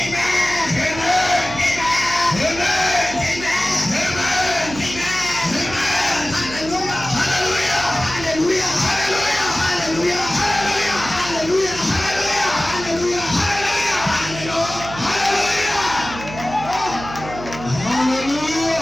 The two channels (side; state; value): right; noise; hum, 12 dB below the sound